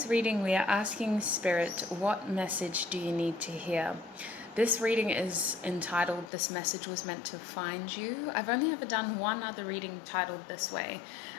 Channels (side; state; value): right; drops out; at 6.3 s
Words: reading we are asking Spirit, what message do you need to hear? This reading is entitled, This Message Was Meant to Find You. I've only ever done one other reading titled this way,